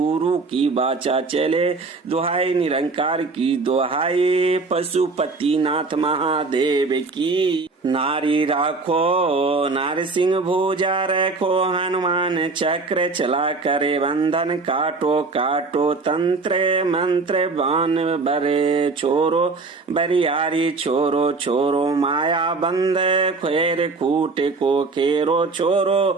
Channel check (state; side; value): quieter; left; 3.9 dB